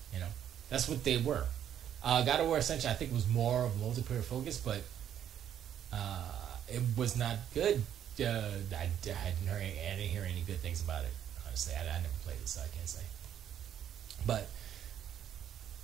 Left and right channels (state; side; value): quieter; left; 9.9 dB